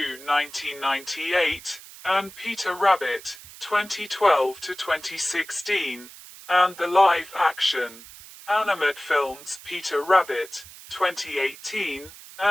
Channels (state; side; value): noise; right; hiss, 18 dB below the sound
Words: and Peter Rabbit, 2012-2016, and the live-action animated films Peter Rabbit, 2018,